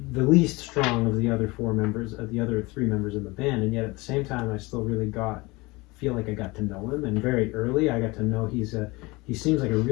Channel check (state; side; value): quieter; right; 23.5 dB